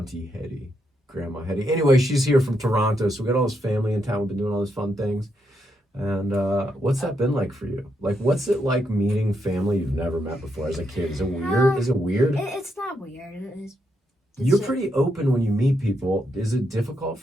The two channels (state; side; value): normal; both; correlation 0.80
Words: Hetty, Grandma Hetty. Anyway, she's here from Toronto, so we got all this family in town. We've been doing all these fun things. And what's that been like for you? Like, what's it like meeting family you've never met before as a kid? Is it weird? Is it weird? It's not weird. You're pretty open when you meet people. Is it difficult